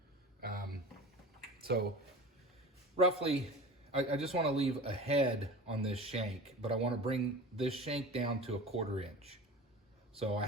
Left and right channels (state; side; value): normal; both; correlation 0.35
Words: So roughly, I just want to leave a head on this shank, but I want to bring this shank down to a 1/4 inch. So I